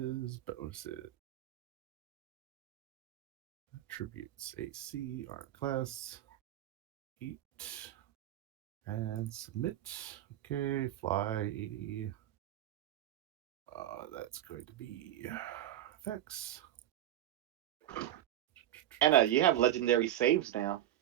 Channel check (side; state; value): left; quieter; 12.6 dB